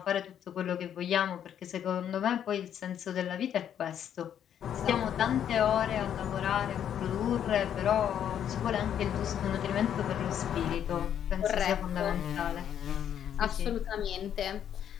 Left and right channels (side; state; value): right; quieter; 9.5 dB